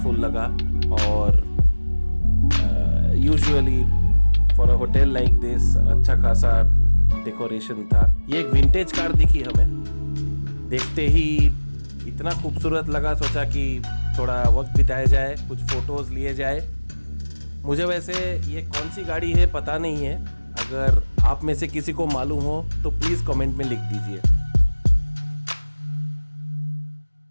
लगा और usually for a hotel like this अच्छा खासा डेकोरेशन था। ये एक विंटेज कार दिखी हमें, देखते ही इतना खूबसूरत लगा, सोचा कि थोड़ा वक्त बिताया जाए, कुछ फ़ोटोज़ लिए जाए। मुझे वैसे ये कौन सी गाड़ी है पता नहीं है, अगर आप में से किसी को मालूम हो तो प्लीज़ कमेंट में लिख दीजिए।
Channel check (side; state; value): both; inverted; correlation -1.00